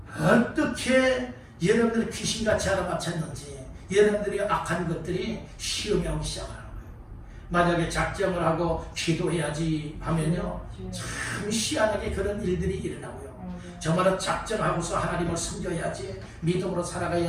어떻게 여러분들이 귀신같이 알아맞혔는지 여러분들이 악한 것들이 시험이 오기 시작하는 거예요. 만약에 작정을 하고 기도해야지 하면요. 참 희한하게 그런 일들이 일어나고요. 정말로 작정하고서 하나님을 섬겨야지, 믿음으로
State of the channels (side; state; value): both; identical; correlation 1.00